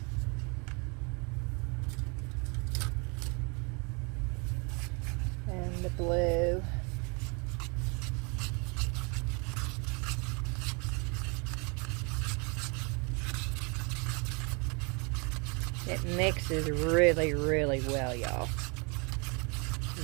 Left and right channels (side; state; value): left; quieter; 32.4 dB